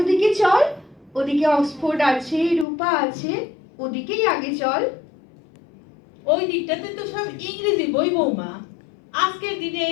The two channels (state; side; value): drops out; right; at 2.7 s